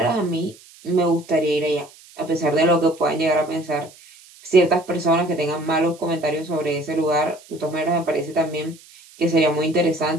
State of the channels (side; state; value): right; noise; hiss, 24 dB below the sound